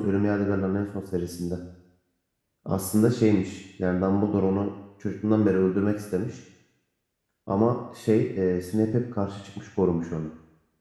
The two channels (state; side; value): identical; both; correlation 1.00